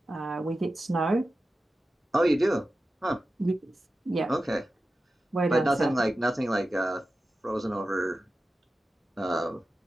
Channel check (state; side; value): normal; both; correlation 0.93